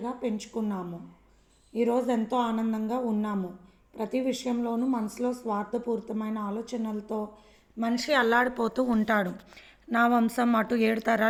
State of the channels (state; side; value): identical; both; correlation 1.00